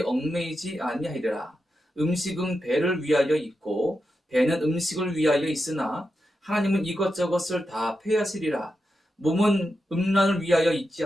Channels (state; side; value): normal; both; correlation 0.88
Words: 얽매이지 아니하리라. 음식은 배를 위하여 있고 배는 음식을 위하여 있으나 하나님은 이것저것을 다 폐하시리라. 몸은 음란을 위하여 있지